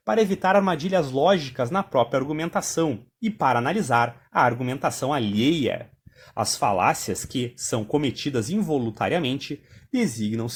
para evitar armadilhas lógicas na própria argumentação e para analisar a argumentação alheia. As falácias que são cometidas involuntariamente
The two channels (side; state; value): both; identical; correlation 1.00